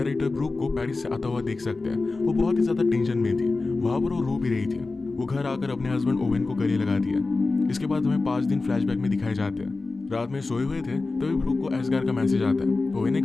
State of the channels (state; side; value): quieter; right; 3.6 dB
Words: ब्रूक को पेरिस से आता हुआ देख सकते हैं। वो बहुत ही ज्यादा टेंशन में थी, वहां पर वो रो भी रही थी। वो घर आकर अपने हस्बैंड ओवेन को गले लगा दिया। इसके बाद हमें 5 दिन फ्लैशबैक में दिखाए जाते हैं। रात में सोए हुए थे तभी ब्रूक को एसगार का मैसेज आता है। ओवेन ने